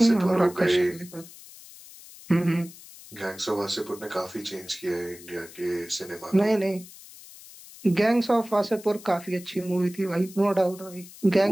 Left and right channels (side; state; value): left; noise; hiss, 19 dB below the sound